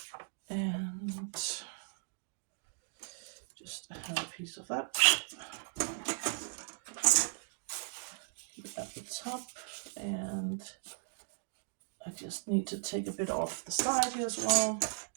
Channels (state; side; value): silent; left; digital silence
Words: And just have a piece of that at the top, And I just need to take a bit off the side here as well.